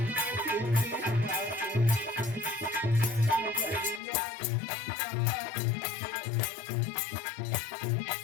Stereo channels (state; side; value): drops out; right; at 4.0 s